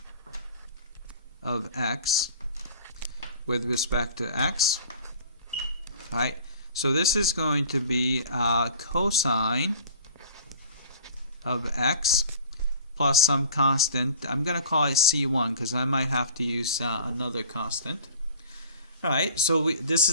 of x with respect to x. Right? So this is going to be cosine of x plus some constant. I'm going to call it c1 because I might have to use another constant. Alright, so this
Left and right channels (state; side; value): inverted; both; correlation -0.45